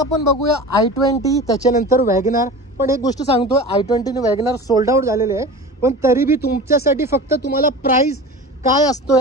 बघूया i20, त्याच्यानंतर वॅगनार. पण एक गोष्ट सांगतो, i20 आणि वॅगनार सोल्ड आउट झालेले आहे, पण तरी बी तुमच्यासाठी फक्त तुम्हाला प्राइस काय असतो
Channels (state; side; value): normal; both; correlation 0.34